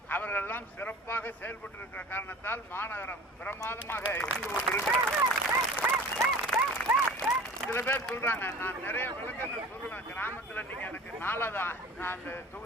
அவர்கள் எல்லாம் சிறப்பாக செயல்பட்டு இருக்கிற காரணத்தால் மாநகரம் பிரமாதமாக இருந்து கொண்டிருக்கிறது. சில பேர் சொல்றாங்க, நான் நிறைய விளக்கங்கள் சொல்லுவேன். கிராமத்துல நீங்க எனக்கு 4வது நான் அந்த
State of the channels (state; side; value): normal; both; correlation 0.40